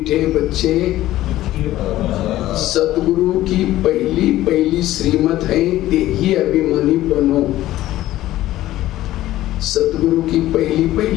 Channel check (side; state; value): right; quieter; 14.9 dB